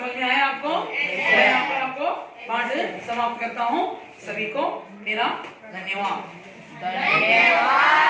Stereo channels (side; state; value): both; identical; correlation 1.00